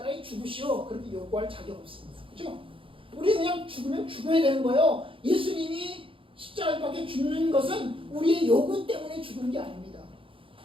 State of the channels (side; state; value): left; late; 0.25 ms